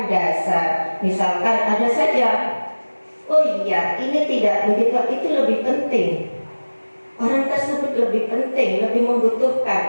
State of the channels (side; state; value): both; inverted; correlation -1.00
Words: dasar. Misalkan ada saja, oh iya ini tidak begitu, itu lebih penting. Orang tersebut lebih penting, lebih